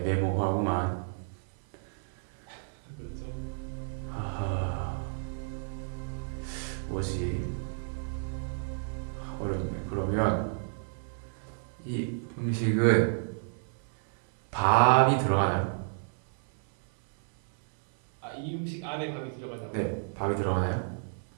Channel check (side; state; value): left; silent; 57 dB below the other